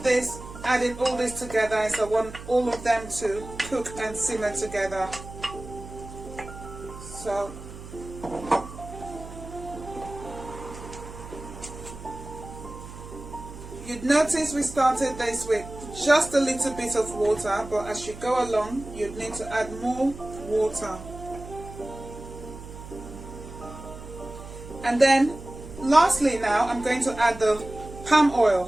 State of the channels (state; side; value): noise; right; hum, 14 dB below the sound